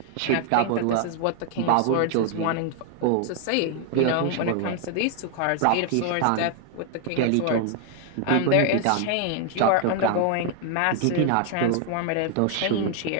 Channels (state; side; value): different; both; correlation 0.00